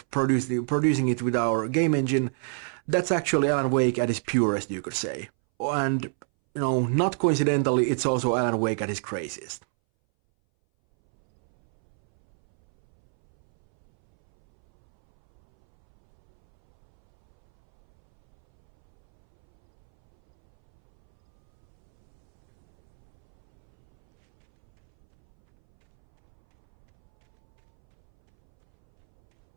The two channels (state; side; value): silent; left; 61 dB below the other